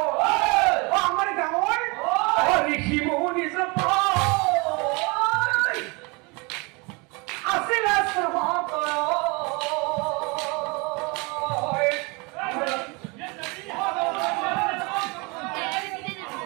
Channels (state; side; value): quieter; left; 28.5 dB